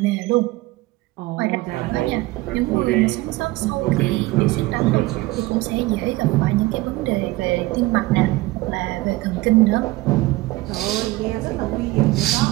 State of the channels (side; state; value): left; quieter; 19.7 dB